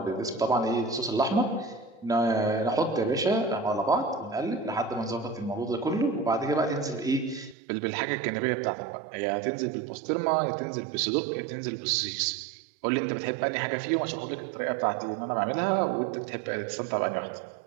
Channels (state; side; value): drops out; left; at 7.6 s